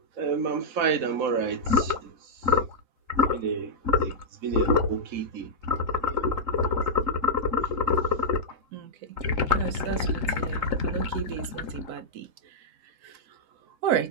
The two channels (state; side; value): late; left; 3.8 ms